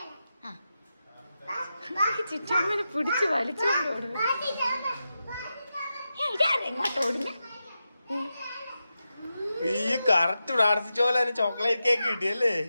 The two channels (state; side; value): inverted; both; correlation -0.90